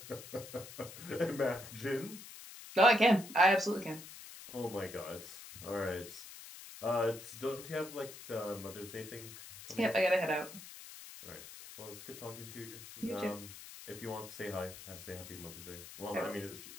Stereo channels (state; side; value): noise; left; hiss, 14 dB below the sound